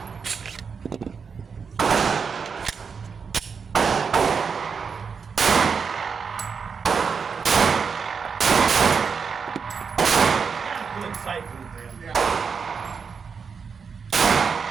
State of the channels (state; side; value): quieter; left; 5.8 dB